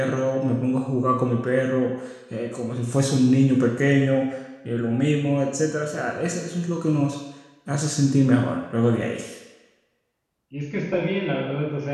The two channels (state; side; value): identical; both; correlation 1.00